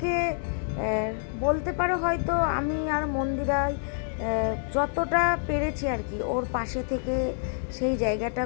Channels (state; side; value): silent; right; digital silence